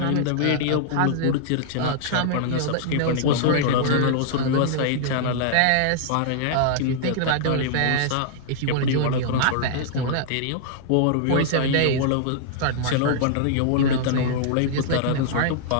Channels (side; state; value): both; different; correlation -0.01